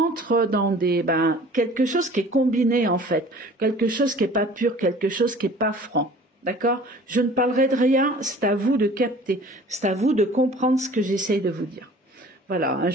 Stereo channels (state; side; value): normal; both; correlation 0.47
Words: dans quelque chose qui est combiné, en fait. Quelque chose qui est pas pur, quelque chose qui est pas franc. D'accord? Je ne parlerai de rien, c'est à vous de capter. C'est à vous de comprendre ce que j'essaye de vous dire. Voilà, hein,